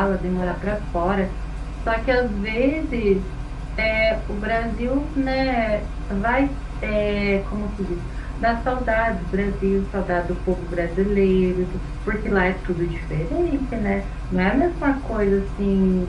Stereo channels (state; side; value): identical; both; correlation 1.00